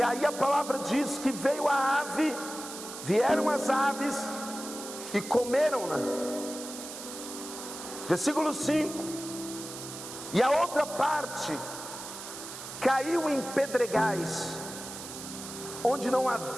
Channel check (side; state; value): right; noise; hiss, 10 dB below the sound